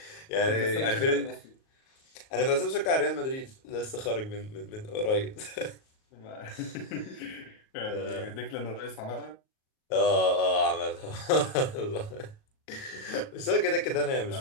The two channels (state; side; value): late; right; 38 ms